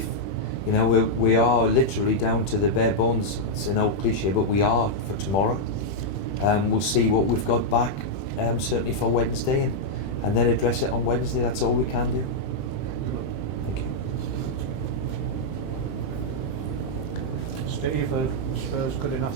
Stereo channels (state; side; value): late; right; 21 ms